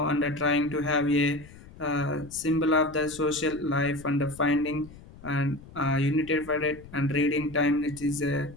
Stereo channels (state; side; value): noise; left; rumble, 19 dB below the sound